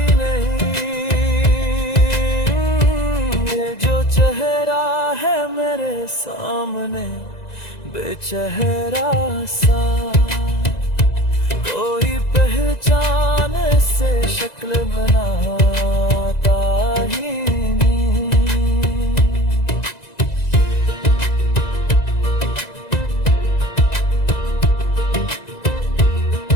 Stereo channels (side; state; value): right; late; 1.9 ms